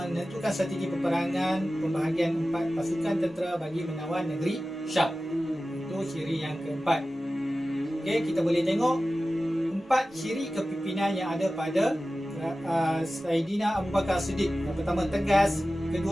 strategi peperangan pembahagian 4 pasukan tentera bagi menawan negeri Syam. Itu ciri yang keempat. Okey, kita boleh tengok 4 ciri kepimpinan yang ada pada Saidina Abu Bakar Siddiq. Yang pertama tegas,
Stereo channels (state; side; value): normal; both; correlation 0.95